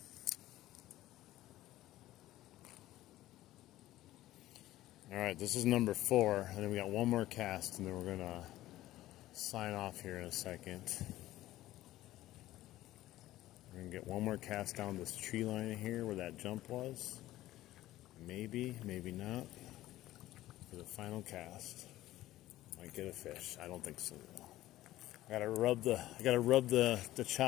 All right, this is number 4, and then we got one more cast, and then we're gonna sign off here in a second. We're going to get one more cast down this tree line here where that jump was. Maybe, maybe not. For the final cast. Might get a fish. I don't think so. I gotta rub the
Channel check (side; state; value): right; quieter; 15.4 dB